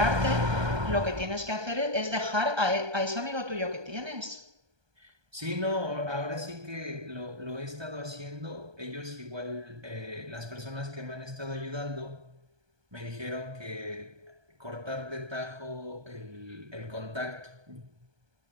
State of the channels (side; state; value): left; late; 1.2 ms